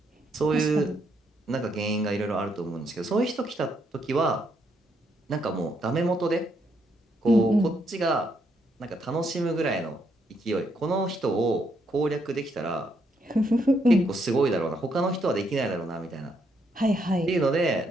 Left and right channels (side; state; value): both; normal; correlation 0.75